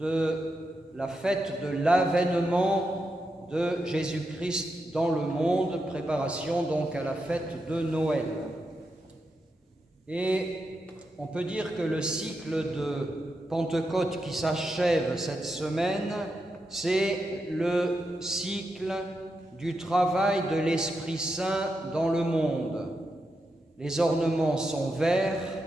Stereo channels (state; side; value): normal; both; correlation 0.86